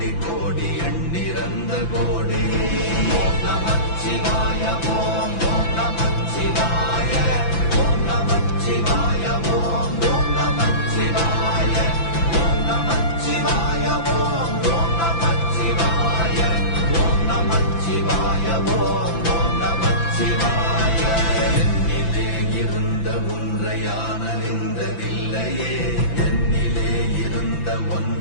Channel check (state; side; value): late; right; 5.9 ms